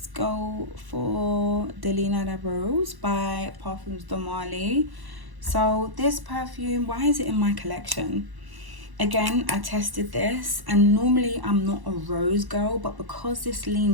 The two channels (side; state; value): left; late; 1.1 ms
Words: go for Delina de Rose by Perfumes de Marly. So this perfume, why is it in my collection? Again, I tested this, and normally I'm not a rose girl, but because this